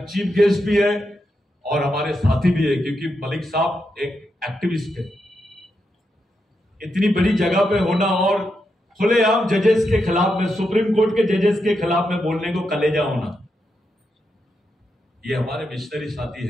चीफ गेस्ट भी है और हमारे साथी भी है, क्योंकि मलिक साहब एक एक्टिविस्ट है। इतनी बड़ी जगह पे होना और खुलेआम जजेस के खिलाफ में, सुप्रीम कोर्ट के जजेस के खिलाफ में बोलने को कलेजा होना, ये हमारे मिशनरी साथी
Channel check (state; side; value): normal; both; correlation 0.84